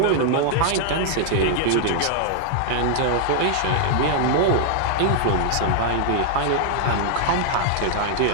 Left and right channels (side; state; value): both; different; correlation -0.01